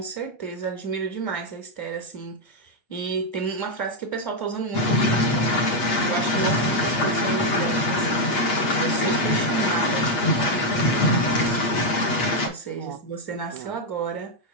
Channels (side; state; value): right; late; 8.4 ms